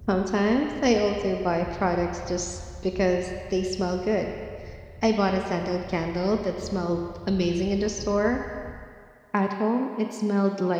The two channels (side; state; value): both; identical; correlation 1.00